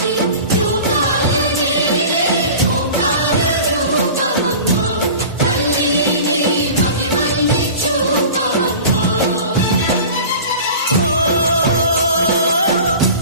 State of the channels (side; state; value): both; inverted; correlation -0.38